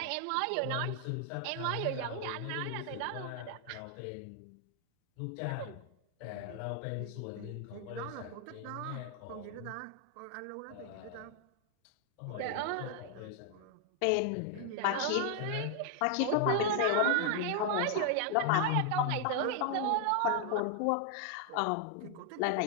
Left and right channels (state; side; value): different; both; correlation 0.00